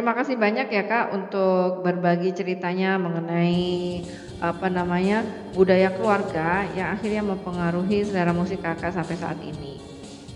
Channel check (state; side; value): identical; both; correlation 1.00